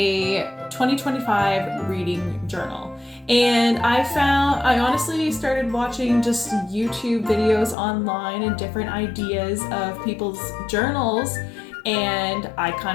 2025 reading journal. And I honestly started watching just YouTube videos online and different ideas of people's journals. And I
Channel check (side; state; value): right; drops out; at 7.8 s